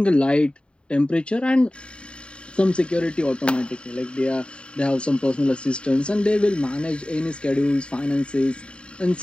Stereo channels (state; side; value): late; right; 0.054 ms